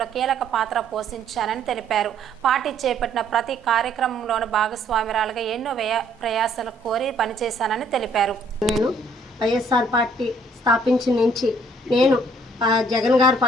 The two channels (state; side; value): normal; both; correlation 0.62